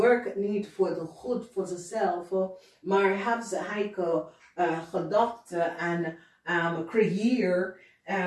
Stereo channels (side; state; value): both; identical; correlation 1.00